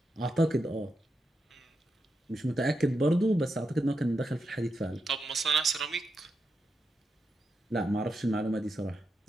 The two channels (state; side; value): normal; both; correlation 0.86